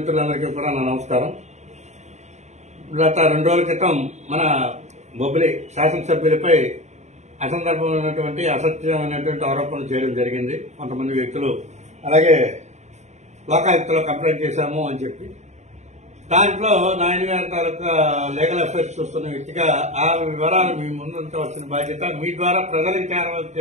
కూడా నా నమస్కారం. గత 2 రోజుల క్రితం మన బొబ్బిలి శాసనసభ్యులపై అసందర్భమైనటువంటి అసత్యమైనటువంటి ఆరోపణలు చేయడం జరిగింది. కొంతమంది వ్యక్తులు అలాగే లోకాయుక్తలో కంప్లైంట్ చేశాము అని చెప్పి దాంట్లో నాయన గారి తాలూకా లీగల్ అఫైర్స్ చూస్తున్న వ్యక్తిగా ఆ వివరాలు మీ ముందుంచవలసిన బాధ్యత, మీ ద్వారా ప్రజలకు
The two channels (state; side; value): late; left; 0.33 ms